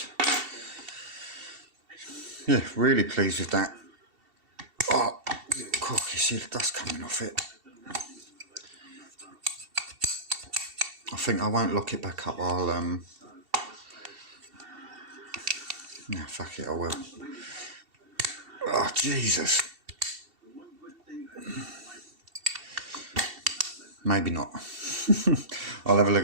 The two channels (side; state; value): left; late; 2.7 ms